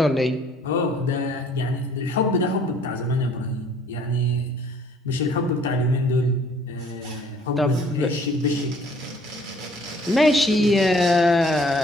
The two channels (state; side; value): normal; both; correlation 0.57